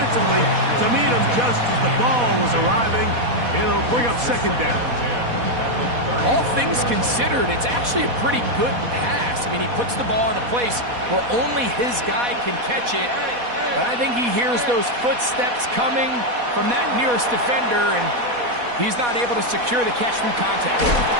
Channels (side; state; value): left; late; 4.1 ms